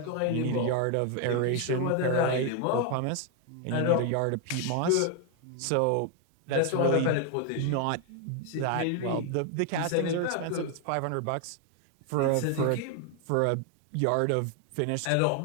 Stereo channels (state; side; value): different; both; correlation 0.01